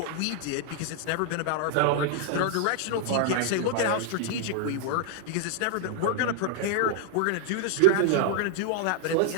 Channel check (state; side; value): different; both; correlation -0.01